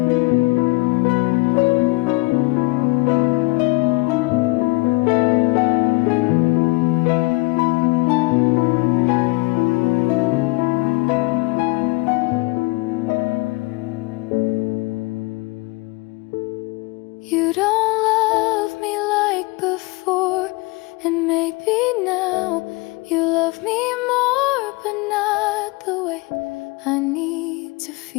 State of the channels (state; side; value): quieter; right; 25.0 dB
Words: You don't love me like before, and maybe now you love me more, but not the way I need to